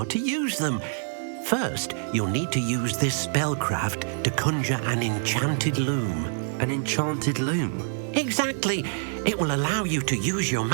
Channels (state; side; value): silent; left; 61 dB below the other